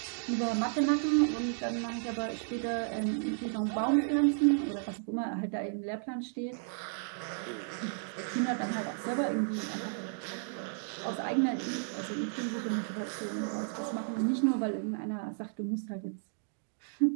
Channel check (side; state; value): left; silent; digital silence